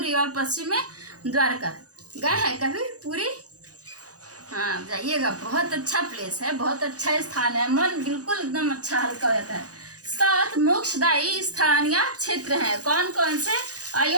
द्वारका। गए हैं कभी पुरी? हाँ, जाइएगा, बहुत अच्छा प्लेस है, बहुत अच्छा स्थान है। मन बिल्कुल एकदम अच्छा हल्का हो जाता है। 7 मोक्षदायी स्थान या क्षेत्र हैं। कौन कौन से?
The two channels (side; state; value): left; late; 0.67 ms